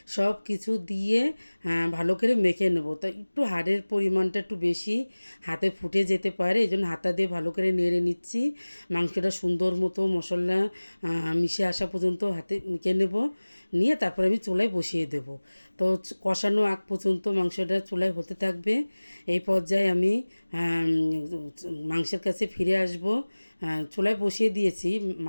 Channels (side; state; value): both; inverted; correlation -1.00